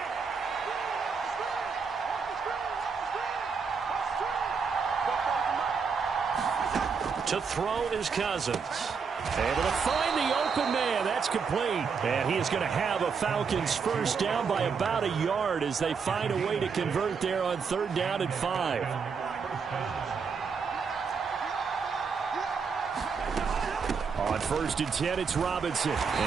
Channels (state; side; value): quieter; left; 5.7 dB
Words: To throw is Cousins. Able to find the open man. That's complete. And he is going to have a Falcons first down by about a yard as they find a way to convert there on 3rd down and 5. On 1st and 10, it's Robinson.